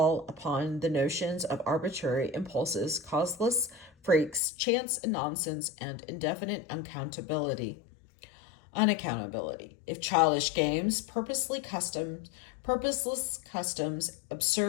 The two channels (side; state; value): right; drops out; at 4.4 s